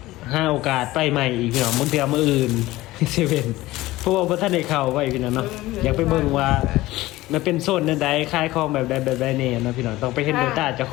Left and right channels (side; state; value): right; quieter; 17.8 dB